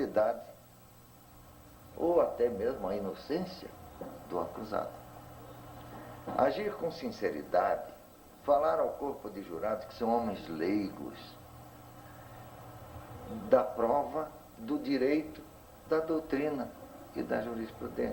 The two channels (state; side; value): identical; both; correlation 1.00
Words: ou até mesmo a inocência do acusado. Agir com sinceridade, falar ao corpo de jurados, que são homens leigos, da prova, do direito, da doutrina e da